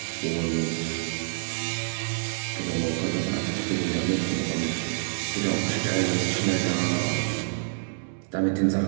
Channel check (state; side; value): silent; left; 59 dB below the other